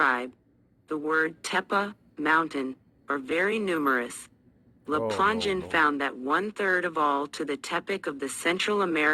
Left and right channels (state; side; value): identical; both; correlation 1.00